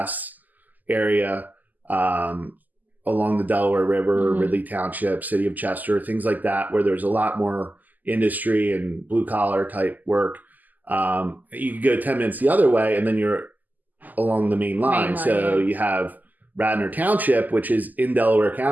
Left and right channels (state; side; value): late; left; 0.083 ms